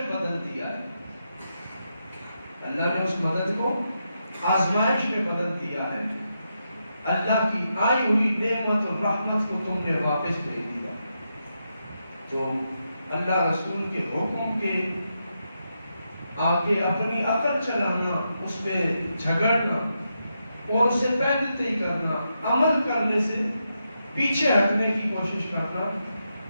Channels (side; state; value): both; inverted; correlation -0.84